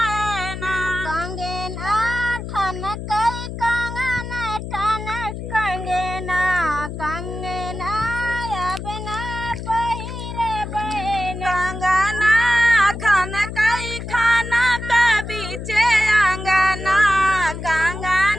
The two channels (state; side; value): noise; left; hum, 8 dB below the sound